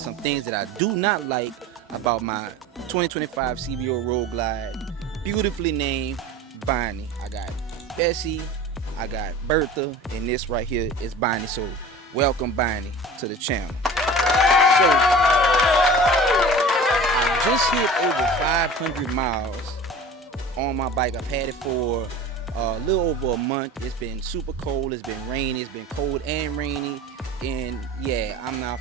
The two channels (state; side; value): normal; both; correlation 0.38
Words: things that I do not like about my 2025 CVO Road Glide, beautifully named Bonnie. I got Bessie, I got Bertha, and this right here is Bonnie. So, welcome Bonnie to the channel. So, I just hit over 500 miles on my bike. I've had it for a little over a month. It's been super cold, it's been rainy, it's been cold and rainy, and yeah, I'm not